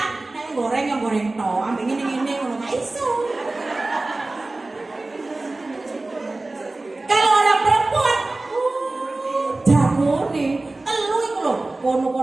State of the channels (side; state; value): left; quieter; 3.0 dB